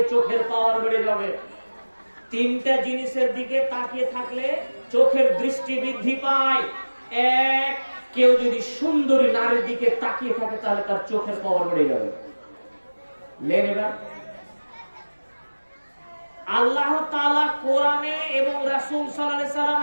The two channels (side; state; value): both; inverted; correlation -1.00